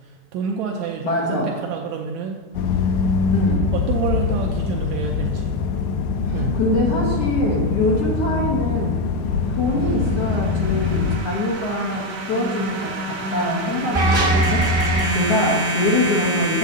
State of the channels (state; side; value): normal; both; correlation 0.07